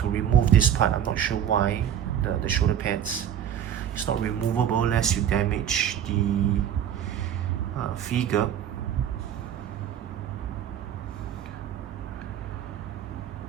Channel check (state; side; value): quieter; left; 9.5 dB